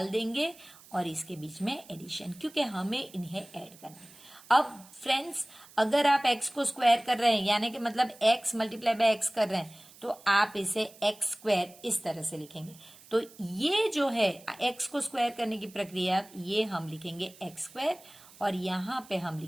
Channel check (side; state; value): right; noise; hiss, 22 dB below the sound